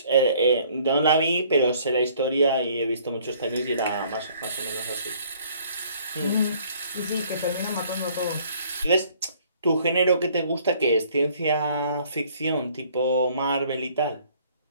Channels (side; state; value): both; inverted; correlation -0.59